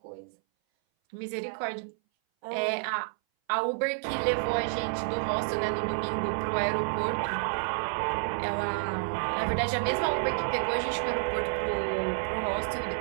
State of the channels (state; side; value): silent; left; 58 dB below the other